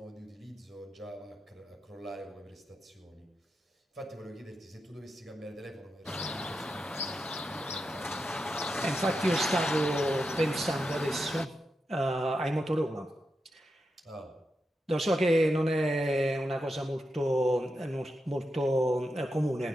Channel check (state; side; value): normal; both; correlation 0.87